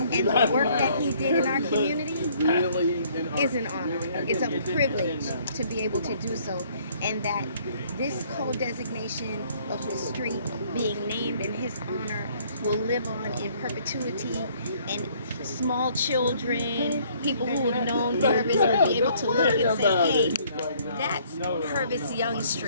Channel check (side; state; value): both; inverted; correlation -0.61